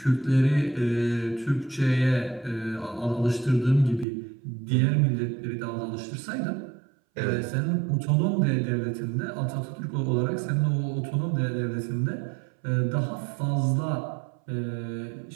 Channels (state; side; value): drops out; left; at 4.0 s